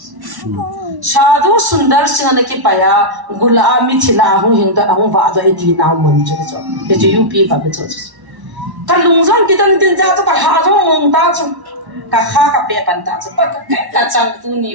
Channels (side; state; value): left; late; 1.1 ms